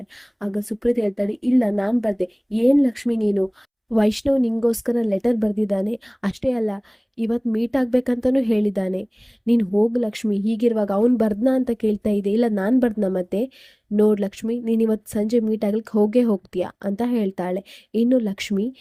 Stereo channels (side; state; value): both; identical; correlation 1.00